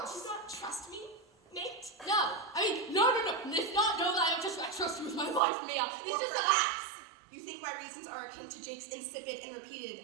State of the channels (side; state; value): left; drops out; at 5.4 s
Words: you not trust me, mate? No. No. It's not no that I trust you with my life, Mia. It's Or just that perhaps you think my reasons are akin to Jake's insipid and